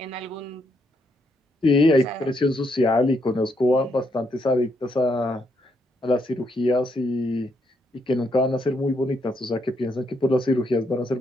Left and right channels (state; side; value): normal; both; correlation 0.76